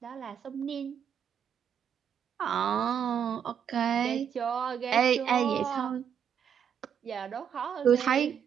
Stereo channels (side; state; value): left; quieter; 8.3 dB